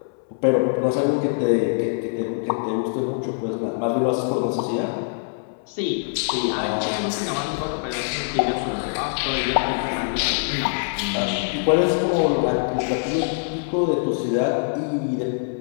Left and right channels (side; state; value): right; silent; digital silence